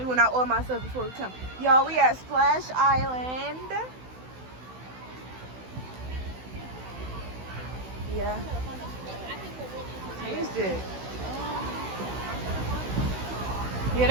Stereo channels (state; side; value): late; left; 16 ms